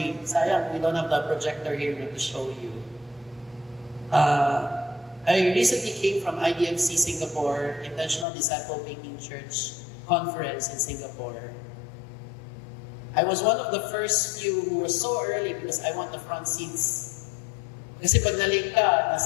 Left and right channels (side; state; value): right; drops out; at 8.2 s